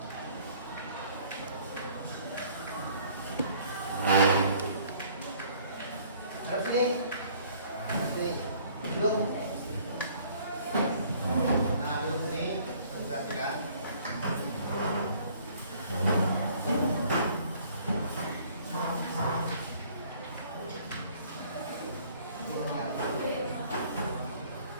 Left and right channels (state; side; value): inverted; both; correlation -0.57